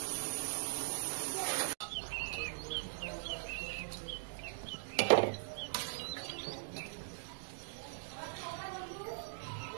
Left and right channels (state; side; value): silent; left; digital silence